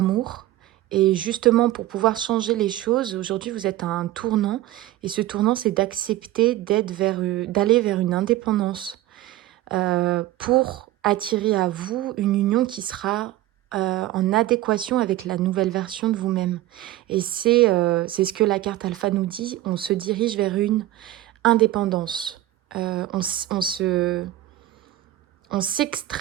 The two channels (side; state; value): left; quieter; 15.1 dB